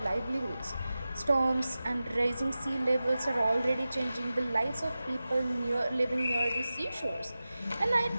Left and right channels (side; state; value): both; inverted; correlation -0.95